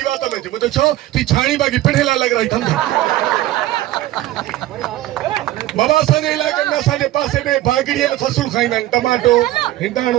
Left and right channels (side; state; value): left; quieter; 15.3 dB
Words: तो में मुझे छो ती छाणी बाकी पिढ़ेला लग रही थम बाबा सने इलाके में साजे पासे में भागड़िए में फसल खाइंदा टमाटो